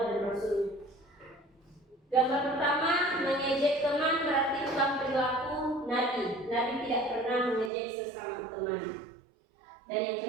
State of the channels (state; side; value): drops out; left; at 7.7 s